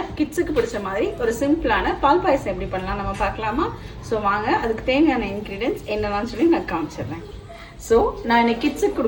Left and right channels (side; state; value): both; identical; correlation 1.00